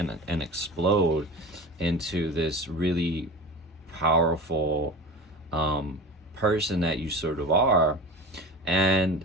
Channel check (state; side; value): normal; both; correlation 0.32